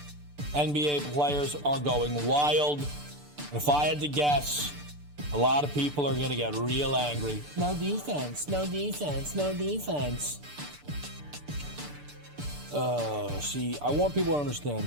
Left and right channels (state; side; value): late; left; 6.8 ms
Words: NBA players are going wild. If I had to guess, a lot of people are going to get real angry. No defense, no defense, no defense. See, I want people to understand